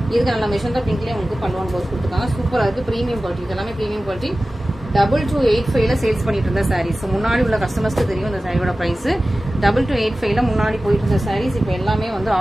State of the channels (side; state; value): both; normal; correlation 0.96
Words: இதுக்கு நல்ல மெஷந்தா பிங்க்லயே உங்களுக்கு பல்லுவன் ப்ளவுஸ் கொடுத்துருக்காங்க. சூப்பரா இருக்கு, பிரீமியம் குவாலிட்டி. இது எல்லாமே பிரீமியம் குவாலிட்டி. 2285 சேல்ஸ் பண்ணிட்டு இருந்த சாரீஸ். முன்னாடி உள்ள கஸ்டமர்ஸ்க்கு தெரியும் இந்த சாரியோட பிரைஸ். 2285 முன்னாடி போயிட்டு இருந்த சாரீஸ் இப்போ எல்லாமே வந்து